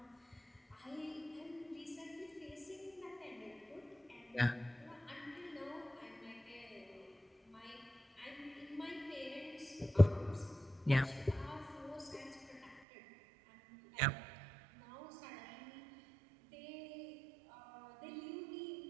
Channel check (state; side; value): drops out; left; at 12.8 s